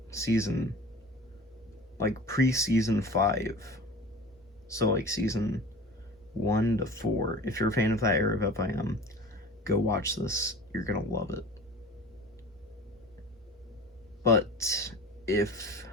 pre-season 5, so, season 1 to 4, if you're a fan of that era of FIM, go watch this. You're gonna love it. But if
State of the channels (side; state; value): both; normal; correlation 0.39